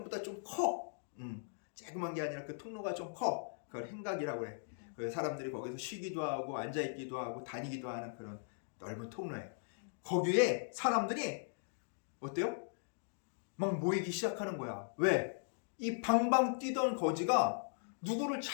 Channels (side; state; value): right; silent; digital silence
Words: 좀 커. 조그만 게 아니라 그 통로가 좀 커. 그걸 행각이라고 그래. 그 사람들이 거기서 쉬기도 하고 앉아있기도 하고 다니기도 하는 그런 넓은 통로예요. 거기에 사람들이 어때요? 막 모이기 시작하는 거야. 왜? 이 방방 뛰던 거지가 누구를